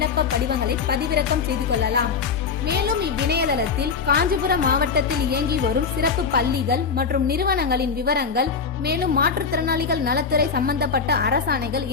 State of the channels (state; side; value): quieter; right; 5.5 dB